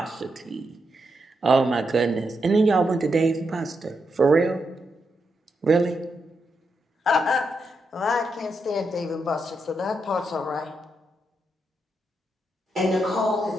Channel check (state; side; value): normal; both; correlation 0.83